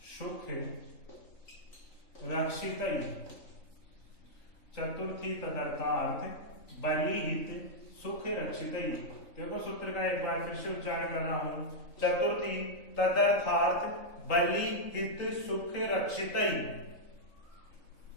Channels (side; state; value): right; late; 3.9 ms